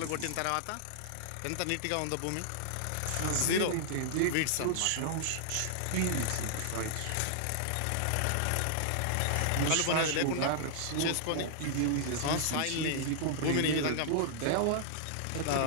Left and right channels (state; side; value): different; both; correlation -0.01